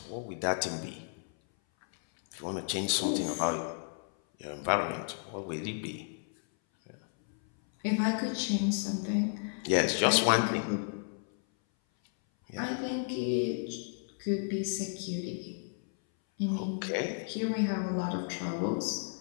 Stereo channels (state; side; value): silent; right; 56 dB below the other